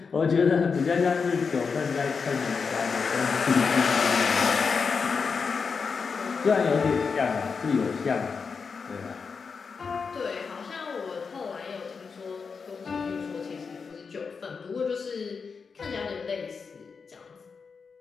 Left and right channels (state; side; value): quieter; right; 5.3 dB